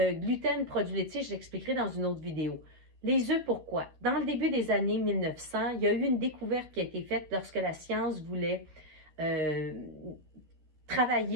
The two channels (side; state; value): left; late; 13 ms